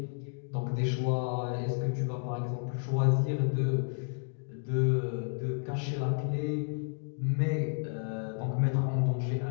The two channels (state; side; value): silent; right; 57 dB below the other